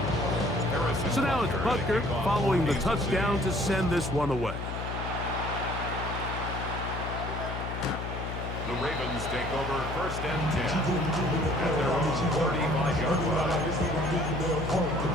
So now it's Butker following the touchdown to send this one away. The Ravens take over first and 10 at their own 35-yard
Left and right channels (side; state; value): left; noise; hum, 6 dB below the sound